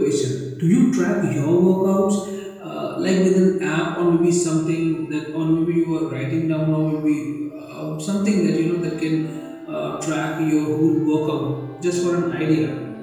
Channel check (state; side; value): identical; both; correlation 1.00